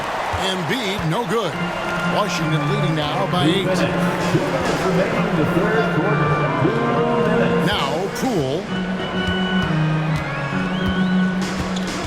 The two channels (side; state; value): both; identical; correlation 1.00